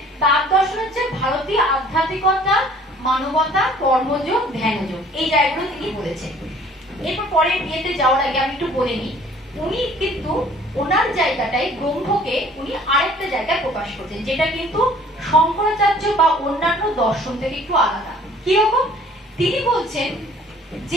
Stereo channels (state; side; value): normal; both; correlation 0.54